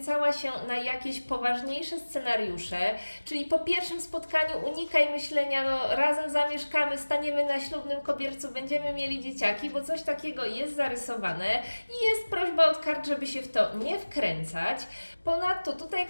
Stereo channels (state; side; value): inverted; both; correlation -1.00